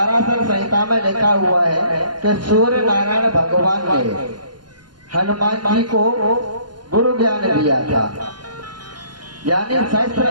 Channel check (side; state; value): left; late; 0.71 ms